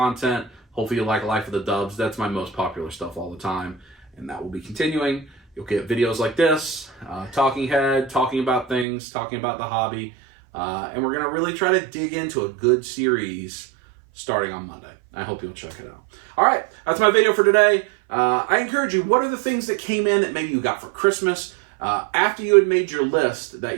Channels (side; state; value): left; drops out; at 8.8 s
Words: Hopefully you like Life of the Dubs. That's my most popular stuff all the time, and that will be continuing. You'll get videos like this, talking head, talking about things, talking about the hobby, and we're going to really try to dig into a good series starting on Monday. I hope you'll check it out. All right, that's my video for today. I encourage you, what are the things that came in that maybe you got for Christmas? After you had made your list that